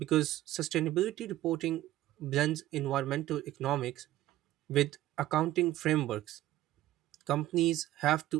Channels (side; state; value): left; quieter; 14.9 dB